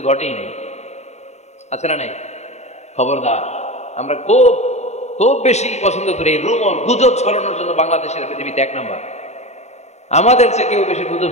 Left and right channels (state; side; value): late; right; 0.32 ms